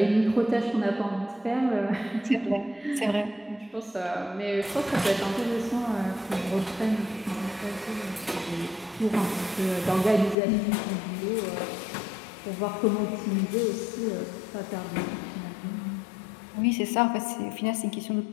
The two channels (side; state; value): right; drops out; at 10.4 s